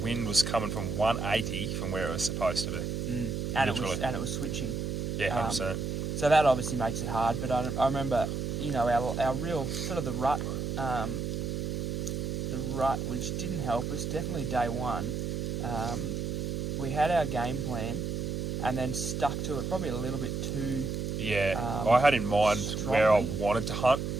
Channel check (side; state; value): right; noise; hum, 2 dB below the sound